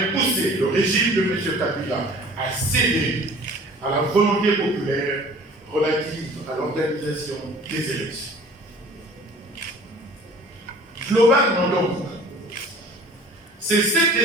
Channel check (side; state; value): both; normal; correlation 0.47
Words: poussé le régime de M. Kabila à céder à la volonté populaire relative à l'organisation des élections. Globalement donc, c'est cet